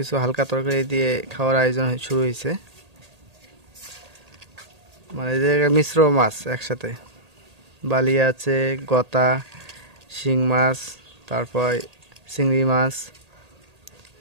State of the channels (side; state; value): left; late; 1.8 ms